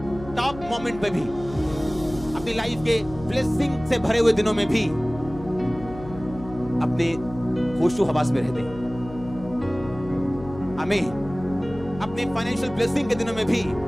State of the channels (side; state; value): left; noise; hum, 14 dB below the sound